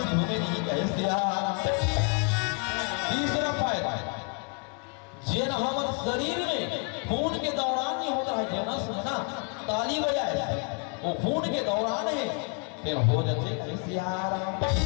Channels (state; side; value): quieter; right; 35.4 dB